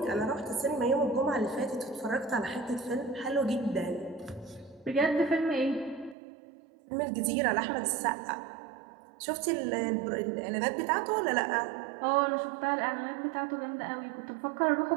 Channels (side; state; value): left; drops out; at 6.2 s